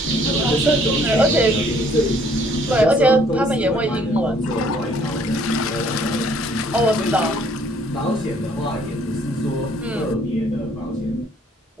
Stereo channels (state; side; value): normal; both; correlation 0.61